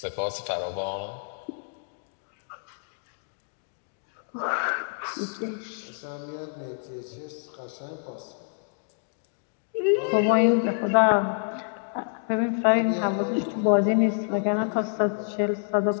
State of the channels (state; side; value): silent; right; digital silence